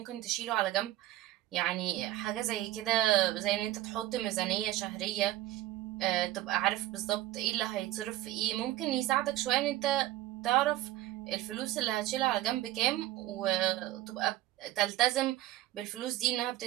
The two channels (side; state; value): left; quieter; 15.3 dB